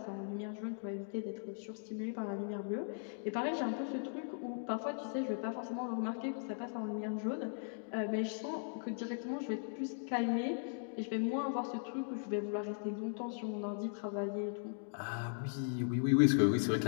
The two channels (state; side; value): silent; right; digital silence